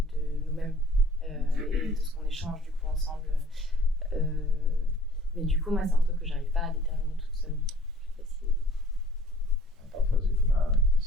de nous-mêmes et de ce qu'on échange du coup ensemble. Mais du coup, moi, c'est un truc que j'arrive pas à déterminer toute seule. Je sais pas si... Parfois, c'est comme un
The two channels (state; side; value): normal; both; correlation 0.52